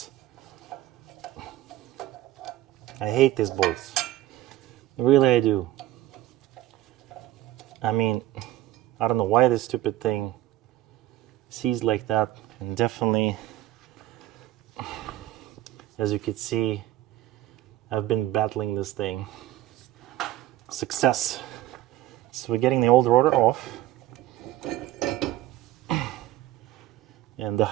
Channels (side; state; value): left; quieter; 14.8 dB